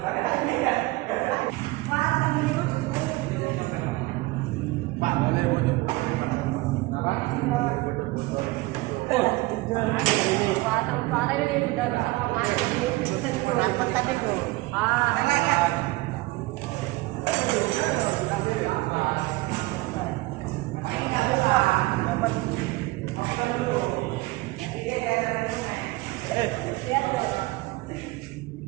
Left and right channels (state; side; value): quieter; left; 21.1 dB